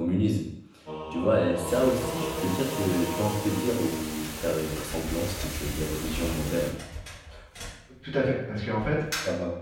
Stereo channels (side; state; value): both; identical; correlation 1.00